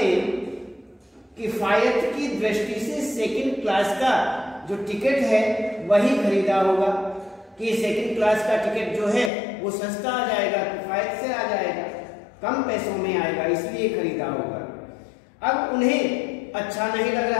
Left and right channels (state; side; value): drops out; right; at 9.3 s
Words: किफायत की दृष्टि से सेकंड क्लास का जो टिकट है वही खरीदा होगा, कि सेकंड क्लास का टिकट जो है वो सस्ता आ जाएगा, किफायत से आ जाएगा, कम पैसों में आएगा, इसलिए खरीदा होगा। अब उन्हें अच्छा नहीं लग